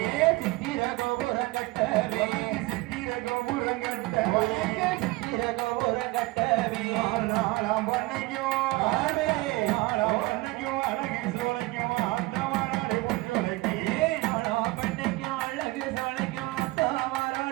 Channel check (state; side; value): quieter; left; 21.1 dB